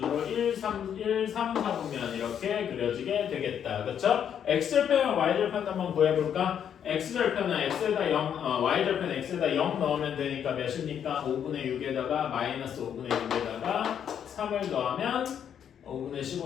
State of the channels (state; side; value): quieter; right; 8.7 dB